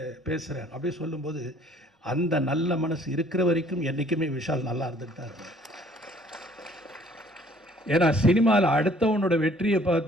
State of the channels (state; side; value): normal; both; correlation 0.58